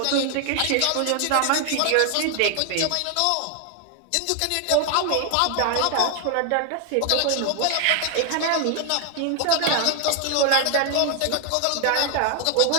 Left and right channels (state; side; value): different; both; correlation 0.00